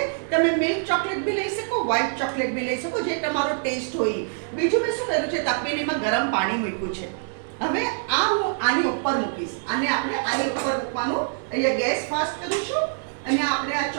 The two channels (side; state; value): left; silent; digital silence